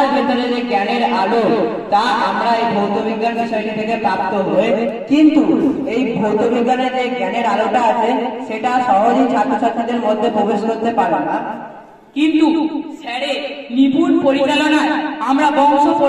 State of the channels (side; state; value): both; identical; correlation 1.00